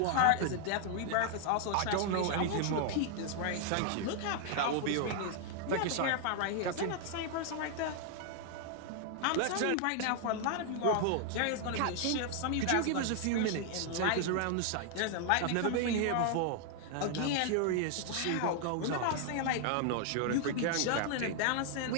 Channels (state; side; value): different; both; correlation 0.00